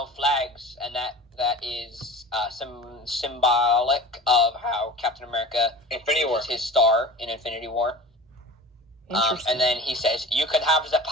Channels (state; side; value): normal; both; correlation 0.37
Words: flags," and that is symbolic of how Captain America uses his star in Infinity War. And then he says, "You could have the